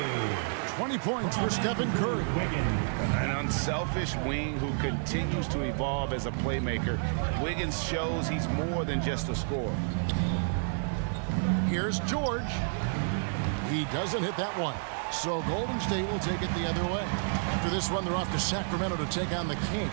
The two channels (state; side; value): silent; left; digital silence